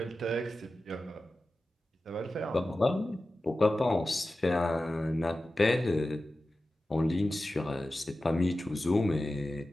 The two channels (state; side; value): normal; both; correlation 0.94